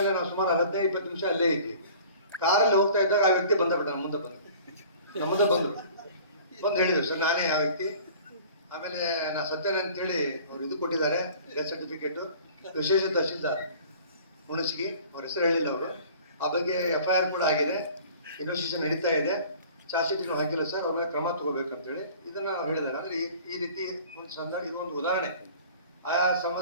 ನಾವು ಸುಮಾರು 15-20 ನಿಮಿಷ ಅಲ್ಲೇ ಇದ್ವಿ. ಕಾರಲ್ಲಿ ಹೋಗ್ತಾ ಇದ್ದಾಗ ಆ ವ್ಯಕ್ತಿ ಬಂದ ಮುಂದೆ ಬಂದರು, ಬಂದು ಹೇಳಿದ್ರು ಸರ್ ನಾನೇ ಆ ವ್ಯಕ್ತಿ. ಆಮೇಲೆ ನಾ ಸತ್ತೇನೆ ಅಂತೇಳಿ ಅವ್ರು ಇದು ಕೊಟ್ಟಿದ್ದಾರೆ ಡೆತ್ ಸರ್ಟಿಫಿಕೇಟು. ವಿಶೇಷ ತಹಶೀಲ್ದಾರ್ ಹುಣಸಗಿ, ಅವ್ರ ಹೆಸರು ಹೇಳಿಲ್ಲ ಅವರು. ಆ ಬಗ್ಗೆ FIR ಕೂಡ ಆಗಿದೆ, ಇನ್ವೆಸ್ಟಿಗೇಷನ್ ನಡೀತಾ ಇದೆ. ಚಾರ್ಜ್ ಶೀಟ್ ಹಾಕಿಲ್ಲ ಸರ್, ಅವ್ರ ಮೇಲೆ ಕ್ರಮ ತಗೋಬೇಕಂತೇಳಿ ಇದನ್ನ ಹೇಳಿದ್ದಾರೆ. ಅಂದ್ರೆ ಈ ರೀತಿ ಒಂದು ಸಂದರ್ಭ, ಇದು ಒಂದು ಉದಾಹರಣೆ. ಆ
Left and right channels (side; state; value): both; inverted; correlation -0.47